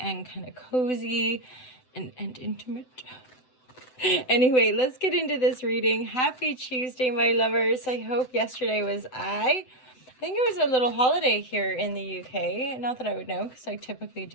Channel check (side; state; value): right; late; 7.9 ms